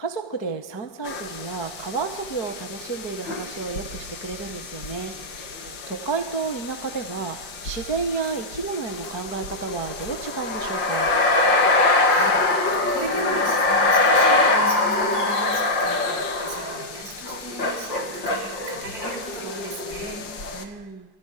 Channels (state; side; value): late; right; 5.6 ms